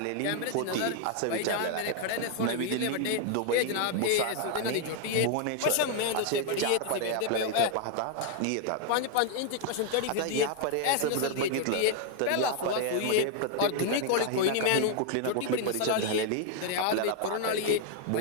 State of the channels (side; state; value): both; different; correlation 0.00